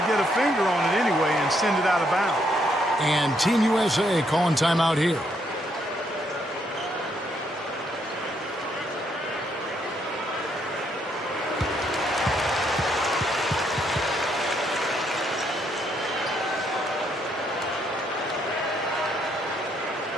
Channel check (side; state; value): both; normal; correlation 0.73